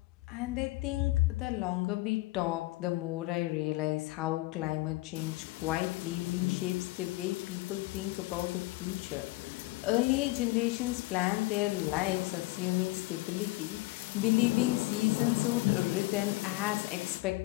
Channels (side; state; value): right; quieter; 20.4 dB